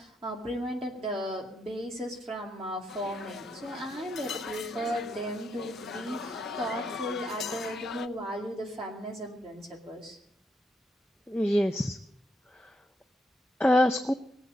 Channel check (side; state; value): both; normal; correlation 0.78